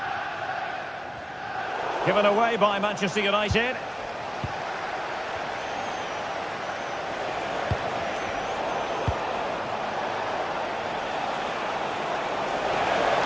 Given away by Manchester United.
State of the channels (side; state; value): both; identical; correlation 1.00